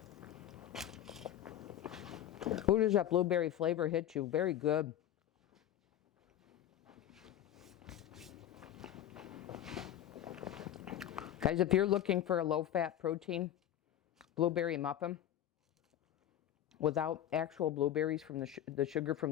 Who does that blueberry flavor hit you? Very good. Guys, if you're looking for a low-fat protein blueberry muffin without actual blueberries from the sugar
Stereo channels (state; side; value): quieter; right; 11.5 dB